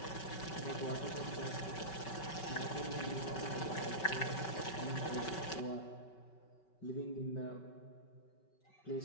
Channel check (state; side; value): late; right; 5.3 ms